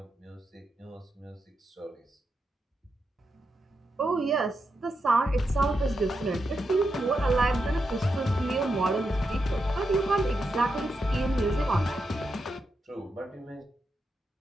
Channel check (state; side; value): normal; both; correlation 0.85